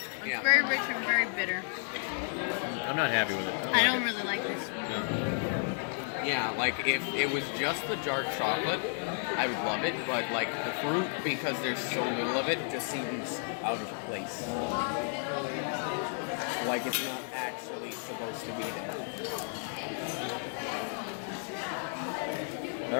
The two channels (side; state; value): right; silent; 56 dB below the other